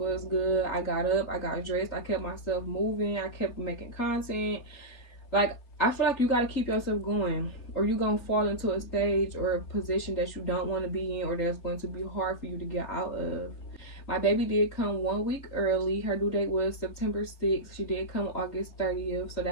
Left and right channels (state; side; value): late; right; 3.8 ms